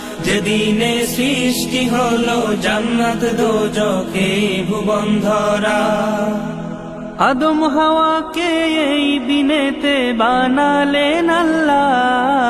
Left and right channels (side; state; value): both; identical; correlation 1.00